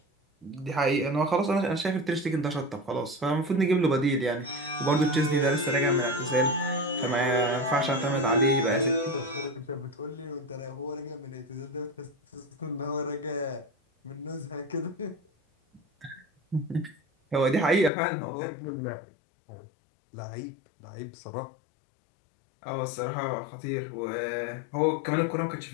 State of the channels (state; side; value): drops out; right; at 17.9 s